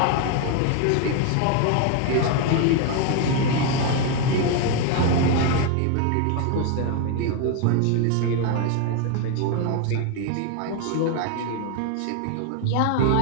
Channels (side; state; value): both; different; correlation 0.01